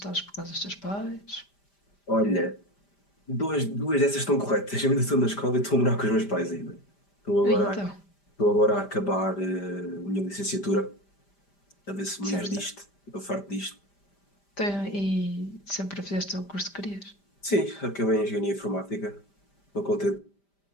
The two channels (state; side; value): late; right; 5.0 ms